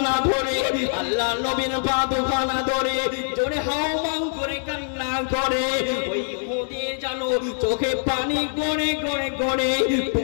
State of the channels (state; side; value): silent; right; digital silence